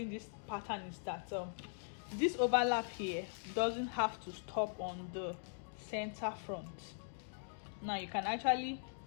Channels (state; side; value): silent; right; digital silence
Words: this pattern is that this overlap here doesn't have to stop on the center front. Now you can actually